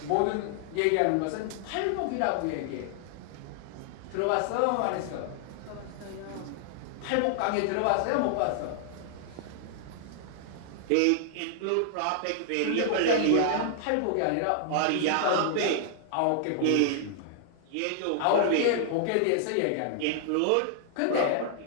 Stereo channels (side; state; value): both; different; correlation -0.01